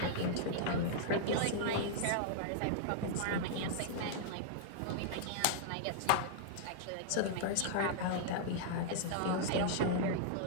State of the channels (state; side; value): different; both; correlation -0.01